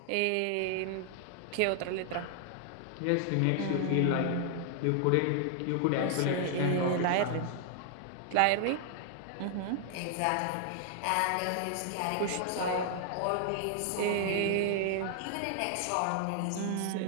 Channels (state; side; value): different; both; correlation 0.00